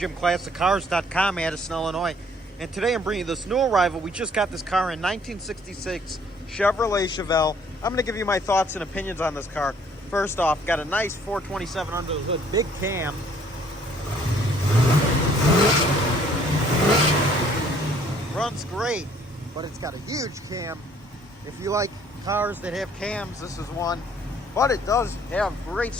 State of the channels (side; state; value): both; normal; correlation 0.60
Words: Addison, Illinois. And today I'm bringing you this new arrival. We just got this car in 1966 Chevrolet Chevelle. I'm going to give you my thoughts and opinions on this car. First off, got a nice 427 under the hood, big cam. Runs great, but it's got a huge cam. If you like cars that have cams, this is one. But it does have great